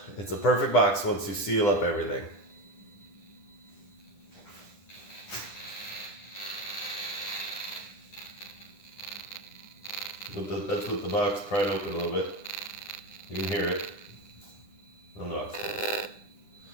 It's a perfect box once you seal up everything. That's what the box pried open a little bit. You can hear it on the box.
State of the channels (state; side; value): late; right; 10 ms